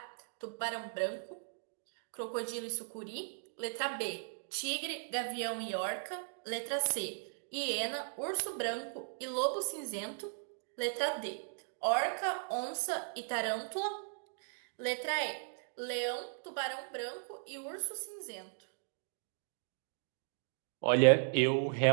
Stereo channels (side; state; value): left; silent; digital silence